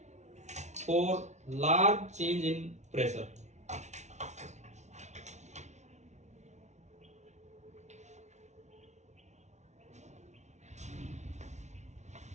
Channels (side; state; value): left; late; 0.33 ms